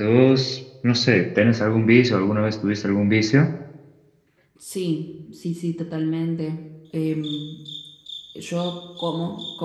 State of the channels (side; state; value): both; identical; correlation 1.00